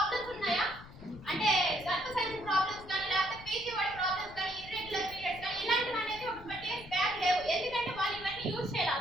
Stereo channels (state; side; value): noise; left; rumble, 17 dB below the sound